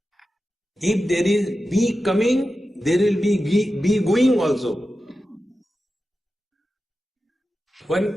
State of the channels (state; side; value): normal; both; correlation 0.92